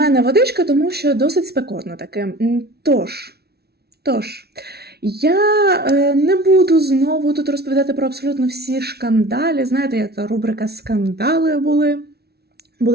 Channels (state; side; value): late; left; 0.46 ms